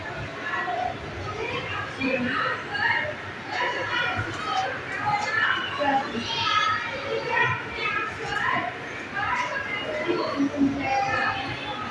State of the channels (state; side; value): identical; both; correlation 1.00